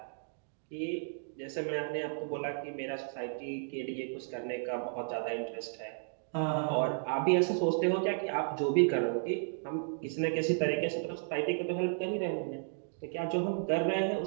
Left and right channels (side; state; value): left; silent; digital silence